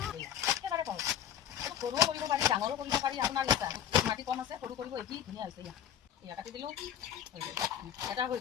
একেবাৰে সহজ। সৰুও কৰিব পাৰি, ডাঙৰো কৰিব পাৰি, আপোনাৰ ইচ্ছা। মাটি কম আছে, সৰু কৰিব, এটি ধুনীয়া হৈছে। ইয়াত কাটি দিলোঁ, হৈ গ'ল। এটা হৈ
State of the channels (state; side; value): quieter; right; 10.1 dB